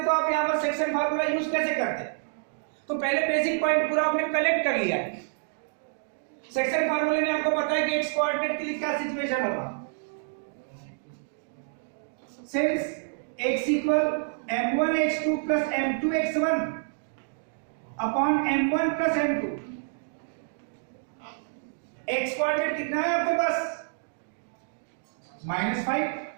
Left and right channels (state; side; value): silent; left; digital silence